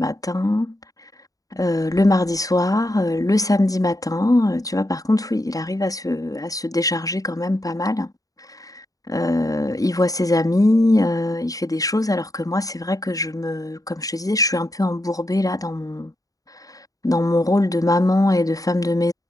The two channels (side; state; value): right; late; 0.17 ms